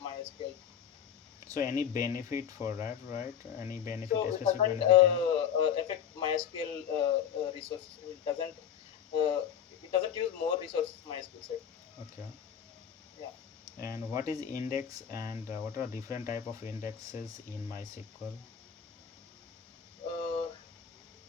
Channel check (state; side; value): quieter; right; 8.6 dB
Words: So any benefit for that, right? Any benefit, So a it specific doesn't benefit? affect MySQL resources. It doesn't use more resources MySQL side. Okay. Yeah. And what is index and what are different type of indexes in MySQL? Uh,